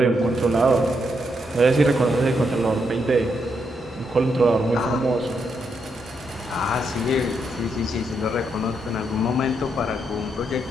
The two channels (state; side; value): normal; both; correlation 0.79